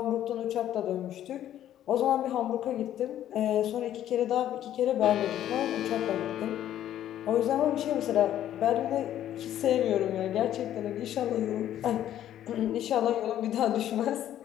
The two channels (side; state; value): right; quieter; 11.6 dB